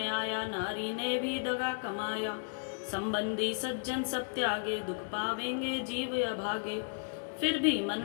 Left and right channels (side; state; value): right; silent; digital silence